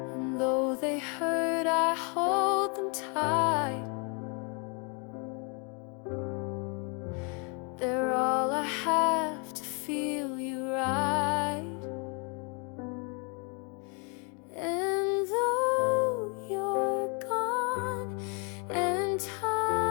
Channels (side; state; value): right; quieter; 35.2 dB